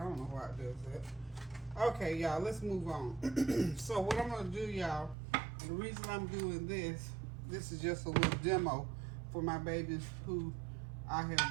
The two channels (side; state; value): left; drops out; at 5.2 s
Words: don't know why it does that. Okay, y'all, let's move on. So what I'm gonna do, y'all, the reason I'm doing this is just a little demo for my babies who I